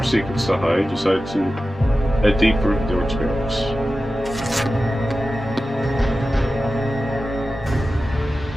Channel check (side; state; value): both; normal; correlation 0.94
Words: secrets to hide. Decide to head deeper into their experiments.